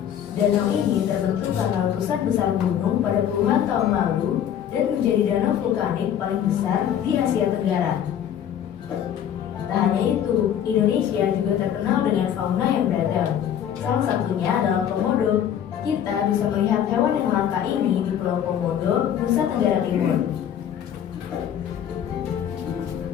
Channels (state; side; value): quieter; right; 9.6 dB